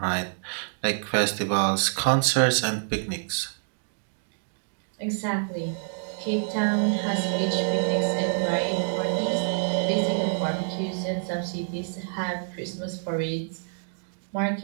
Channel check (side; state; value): left; silent; digital silence